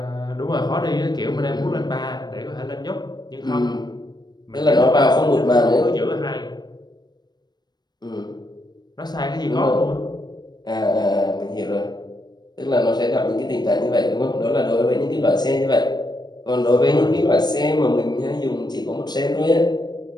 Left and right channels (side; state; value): right; late; 0.20 ms